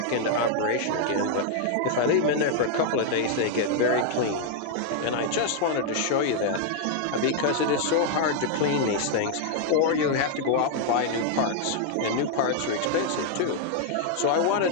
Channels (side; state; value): both; different; correlation 0.00